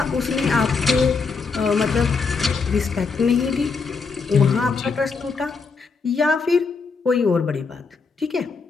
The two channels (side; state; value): right; quieter; 4.8 dB